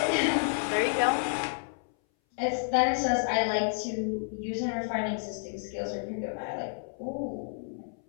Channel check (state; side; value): silent; right; 58 dB below the other